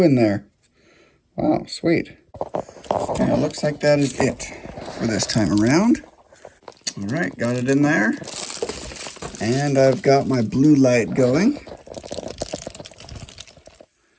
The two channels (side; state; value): both; identical; correlation 1.00